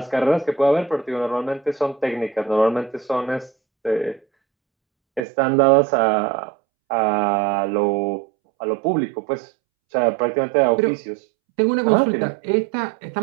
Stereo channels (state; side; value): drops out; left; at 5.2 s